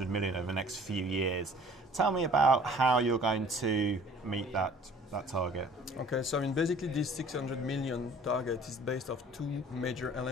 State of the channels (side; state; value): both; normal; correlation 0.51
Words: million over the next few years. Tell me about how you're going to meet that target. Okay, so basically this 600 million target is based off two major